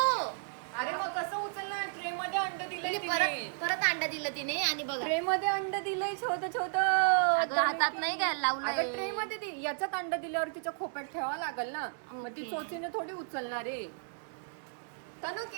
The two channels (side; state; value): left; silent; digital silence